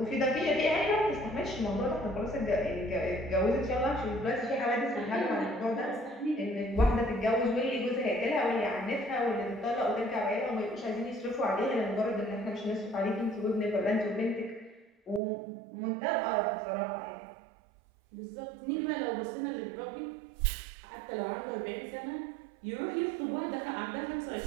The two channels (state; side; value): drops out; left; at 15.2 s